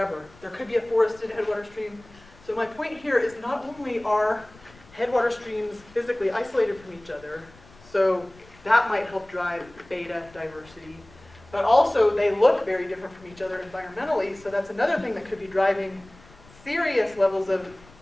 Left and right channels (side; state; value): left; noise; rumble, 25 dB below the sound